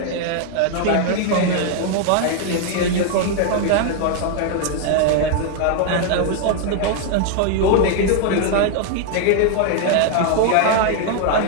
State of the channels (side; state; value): both; different; correlation 0.00